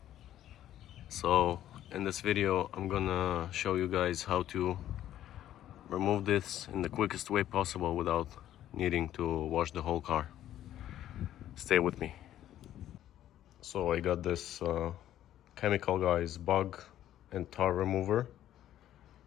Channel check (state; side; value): quieter; right; 12.2 dB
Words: So in this video I'm gonna show you guys how to remove this in the quickest way possible without needing to wash the whole car. Stay with me. So I got this Chemical Guys bug and tar remover.